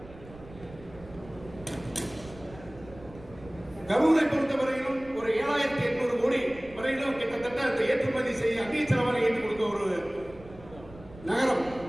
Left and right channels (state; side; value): noise; right; rumble, 19 dB below the sound